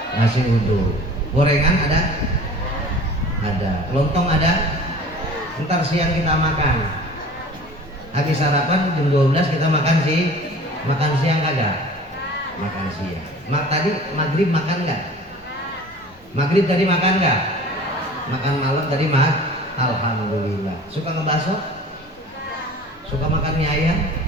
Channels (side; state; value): both; normal; correlation 0.44